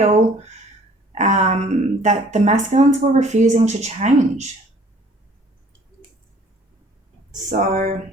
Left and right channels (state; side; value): normal; both; correlation 0.55